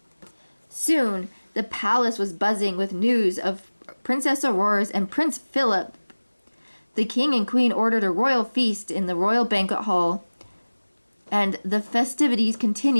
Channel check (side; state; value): both; inverted; correlation -1.00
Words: Soon the palace was buzzing with news of Princess Aurora's and Prince Philip. The king and queen ordered a royal feast in the royal banquet hall, and the festivities